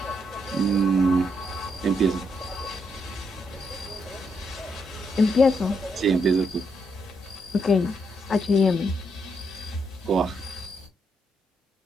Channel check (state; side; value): normal; both; correlation 0.77